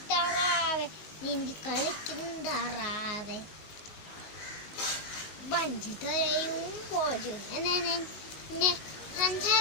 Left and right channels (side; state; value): right; late; 19 ms